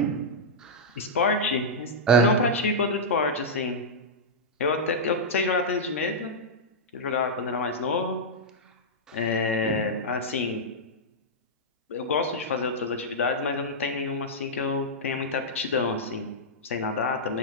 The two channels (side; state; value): both; normal; correlation -0.09